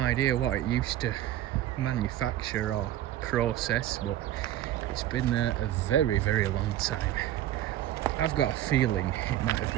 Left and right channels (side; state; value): left; quieter; 12.9 dB